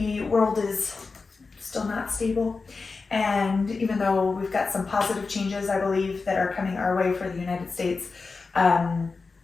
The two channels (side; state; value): right; quieter; 4.3 dB